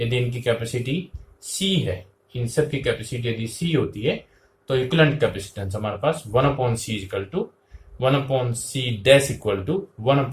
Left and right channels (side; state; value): both; identical; correlation 1.00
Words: इनकी कैपेसिटी C है, इन सब की कैपेसिटी यदि C होती है तो इक्विवेलेंट कैपेसिटेंस हमारे पास 1/C = 1/C dash equal to